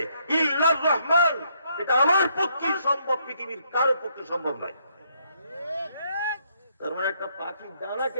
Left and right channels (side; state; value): both; inverted; correlation -0.72